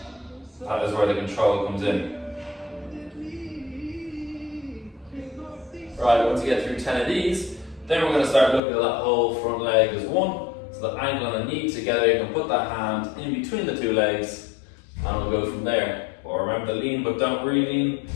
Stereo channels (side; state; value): right; drops out; at 8.6 s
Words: That is where the control comes in. Right, once you get through 10 of these, then we're going to start looking at that whole front leg as one. So the ankle and the knee together, you can put that hand in between the two legs, and we'll go from there. But remember to lean, but don't re-lean.